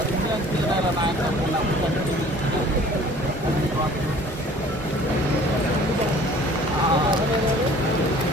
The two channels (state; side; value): normal; both; correlation 0.50